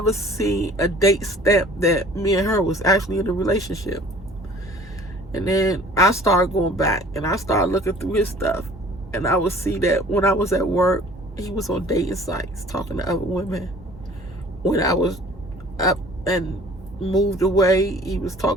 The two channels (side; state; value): both; normal; correlation 0.49